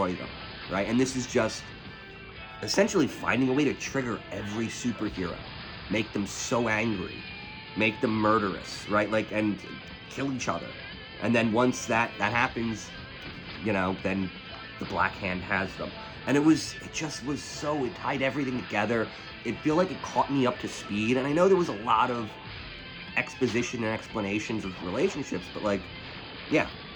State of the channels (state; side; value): identical; both; correlation 1.00